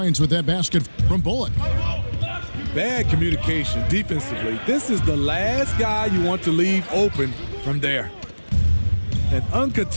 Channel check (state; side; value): inverted; both; correlation -1.00